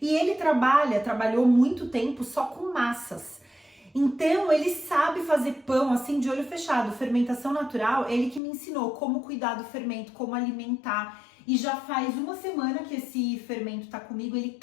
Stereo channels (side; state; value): right; drops out; at 8.4 s